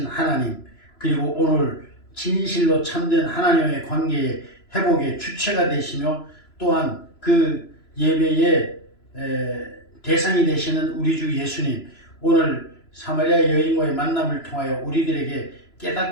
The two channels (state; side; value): late; right; 3.0 ms